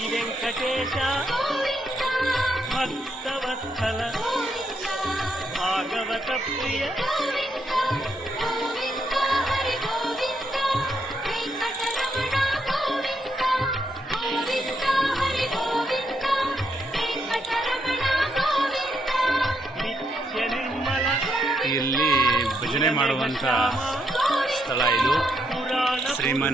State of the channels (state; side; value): normal; both; correlation 0.78